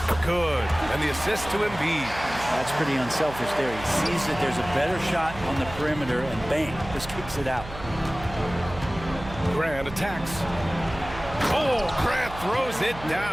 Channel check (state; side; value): noise; right; hum, 13 dB below the sound